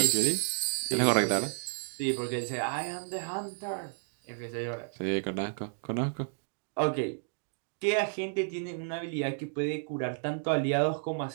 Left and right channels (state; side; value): silent; left; digital silence